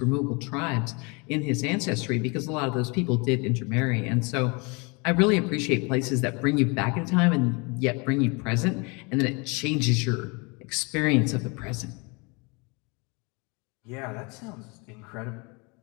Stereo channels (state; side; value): quieter; right; 29.8 dB